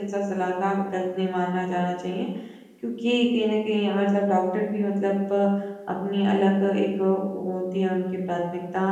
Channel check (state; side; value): identical; both; correlation 1.00